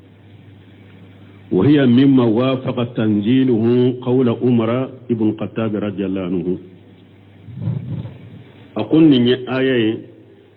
وهي مما وافق تنزيله قول عمر ابن الخطاب رضي الله عنه أقول ني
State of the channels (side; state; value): both; identical; correlation 1.00